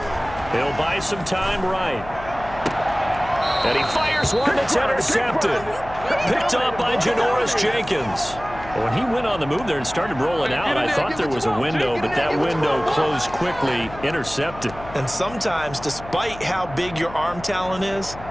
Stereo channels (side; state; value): left; noise; hum, 15 dB below the sound